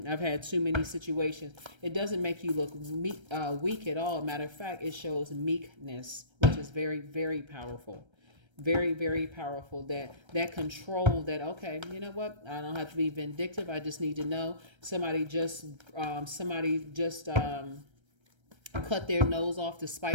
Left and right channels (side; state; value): left; late; 1.3 ms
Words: I've had too many situations. It doesn't make you look weak at all. Matter of fact, it shows meekness, which is very, very powerful. Very, very powerful. That control, that, okay, you know what? I don't have to be vindictive. I just need to know somebody just cut their nose off to